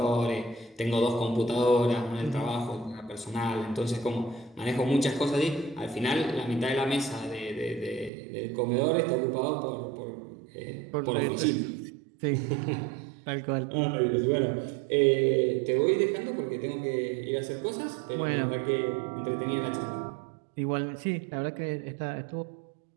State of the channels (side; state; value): left; drops out; at 8.1 s